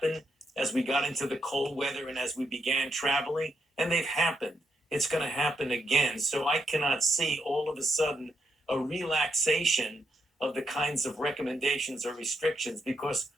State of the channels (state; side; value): normal; both; correlation 0.79